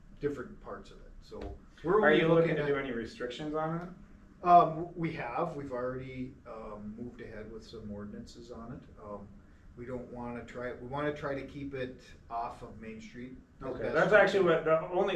different parts of it, so. We're Are only you looking to at- do any restrictions on it? We've already moved ahead with some ordinances on it. We don't wanna we wanna try to keep it off of Main Street. as Okay, best that's we actually can. what, the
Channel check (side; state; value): both; identical; correlation 1.00